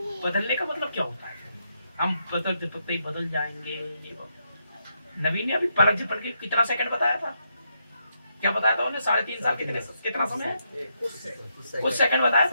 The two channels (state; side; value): inverted; both; correlation -0.80